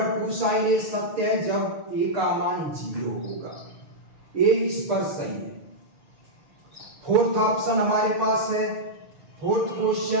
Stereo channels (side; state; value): left; late; 6.5 ms